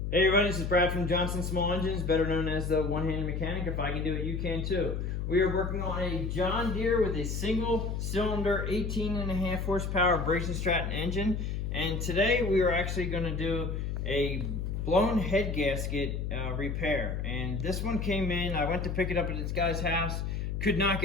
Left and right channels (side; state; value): left; noise; hum, 2 dB below the sound